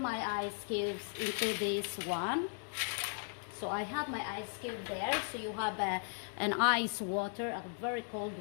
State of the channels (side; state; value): right; silent; 53 dB below the other